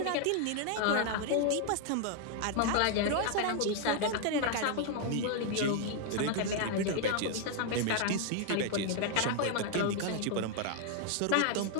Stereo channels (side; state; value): both; different; correlation 0.00